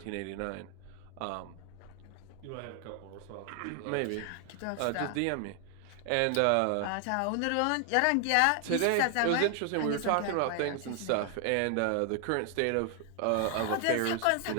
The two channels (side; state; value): both; different; correlation 0.00